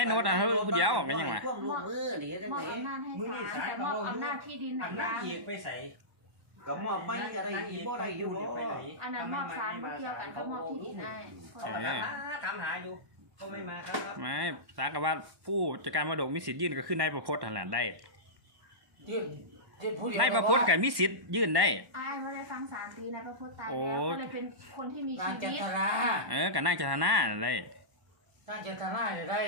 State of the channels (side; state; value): left; late; 1.1 ms